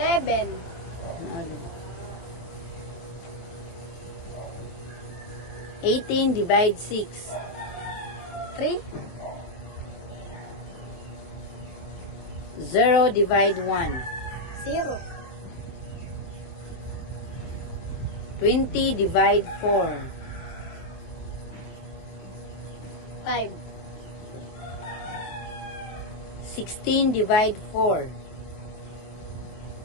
Ano? 18 divide 6. 3. 0 divide 1. 0. 20 divide 4. 5. 16 divide 4.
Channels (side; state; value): right; late; 23 ms